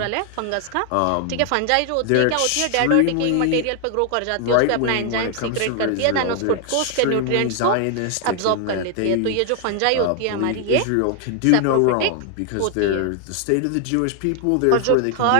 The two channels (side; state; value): both; different; correlation 0.00